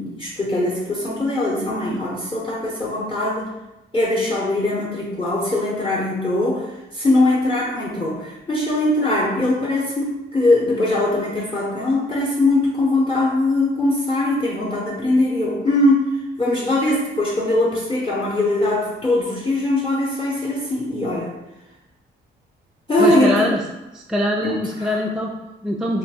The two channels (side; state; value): both; normal; correlation 0.65